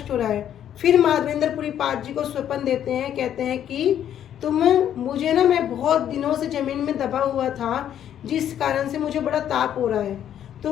हो रहा है। फिर माधवेंद्र पाद जी को स्वप्न देते हैं, कहते हैं कि तुम मुझे ना, मैं बहुत दिनों से जमीन में दबा हुआ था जिस कारण से मुझे बड़ा ताप हो रहा है,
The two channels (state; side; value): quieter; right; 10.2 dB